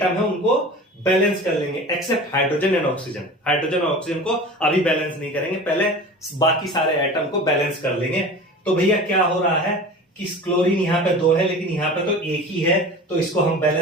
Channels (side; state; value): both; normal; correlation 0.37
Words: है उनको बैलेंस कर लेंगे, except hydrogen and oxygen. Hydrogen और ऑक्सीजन को अभी बैलेंस नहीं करेंगे, पहले बाकी सारे एटम को बैलेंस कर लेंगे। तो भैया क्या हो रहा है कि क्लोरीन यहां पे 2 है, लेकिन यहां पे तो एक ही है, तो इसको हम